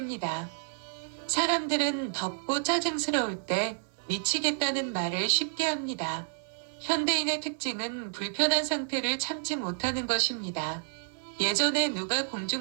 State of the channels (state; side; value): silent; left; 58 dB below the other